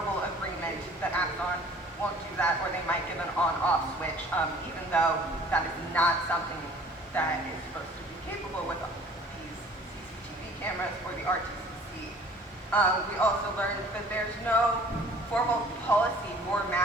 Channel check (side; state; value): both; normal; correlation 0.51